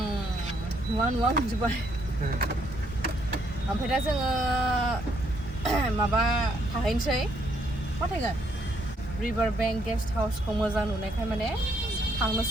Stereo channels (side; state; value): both; normal; correlation 0.71